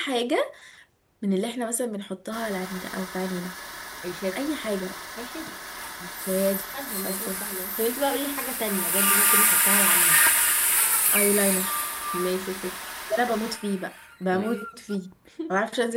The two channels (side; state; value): both; identical; correlation 1.00